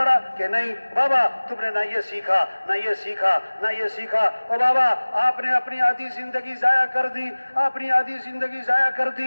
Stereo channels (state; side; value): inverted; both; correlation -1.00